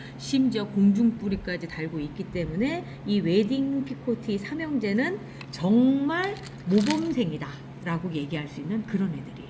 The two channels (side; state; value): both; identical; correlation 1.00